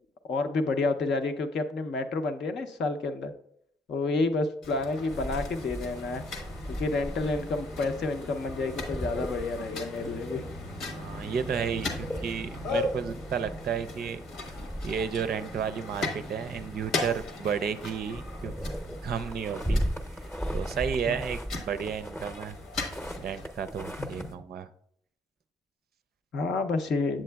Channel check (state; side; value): normal; both; correlation 0.63